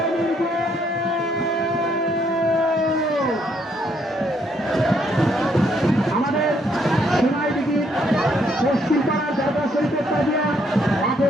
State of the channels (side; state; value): both; normal; correlation 0.70